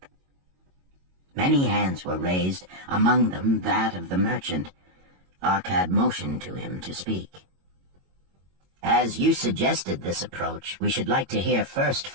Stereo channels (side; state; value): left; late; 22 ms